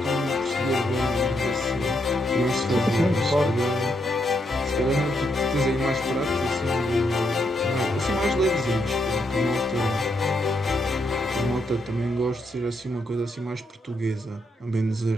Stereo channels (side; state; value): both; normal; correlation 0.79